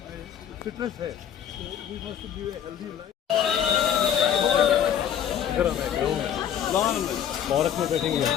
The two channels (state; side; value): quieter; right; 9.3 dB